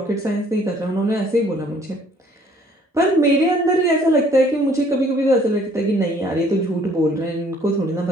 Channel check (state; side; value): normal; both; correlation 0.60